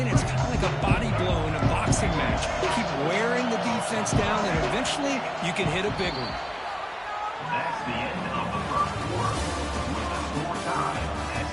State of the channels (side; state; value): both; identical; correlation 1.00